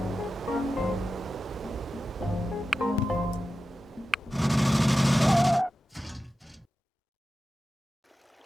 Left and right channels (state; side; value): normal; both; correlation 0.93